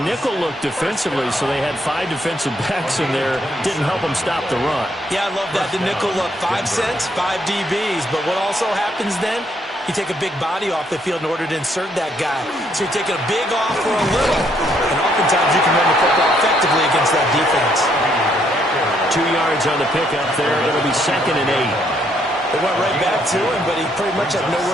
nickel look defensively, so they had 5 defensive backs in there. Didn't help them stop the run. Yeah, I love that. The nickel look, 5 cents, 5 DBs. But what also happens then, you take a big body off the field in order to insert that guy. So you're taking a big off for a little. And oftentimes you can run the football effectively against that defense. 2 yards on the pickup there. It'll be 2nd and 8. They went right back to him, but he pretty much had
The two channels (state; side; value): normal; both; correlation 0.71